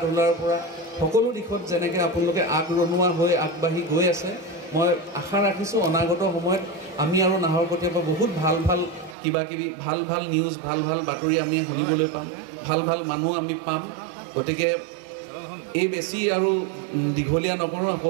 ধূলাৰ পৰা সকলো দিশত যেনেকৈ আপোনালোকে আগৰণুৱা হৈ আগবাঢ়ি গৈ আছে মই আশা ৰাখিছোঁ অনাগত সময়ত আমি আৰু নাহৰকটীয়াৰ পৰা বহুত ভাল কিবাকিবি ভাল নিউজ ভাল বাতৰি আমি শুনিবলৈ পাম, ভাল মানুহ আমি পাম। গতিকে এই বেছি আৰু দীঘলীয়া নকৰোঁ,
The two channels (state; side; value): drops out; left; at 9.2 s